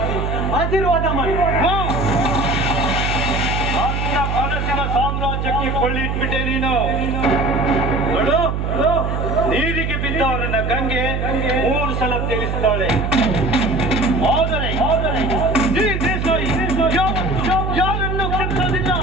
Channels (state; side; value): noise; right; hum, 1 dB below the sound